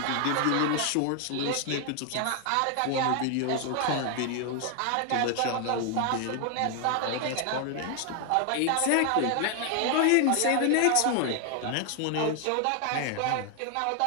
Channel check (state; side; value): different; both; correlation 0.00